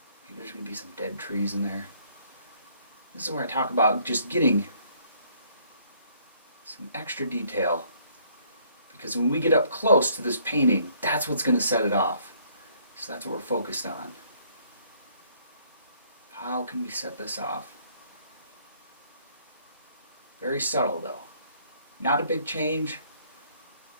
Maybe there's going to be some dead trees in there. This is where I talk about just getting some extra detail. Because when we get up close to this painting, that's what's going to set it off. So that's what we're focused on. How can we set this off? Very subtle though. Not a big change.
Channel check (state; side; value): inverted; both; correlation -0.64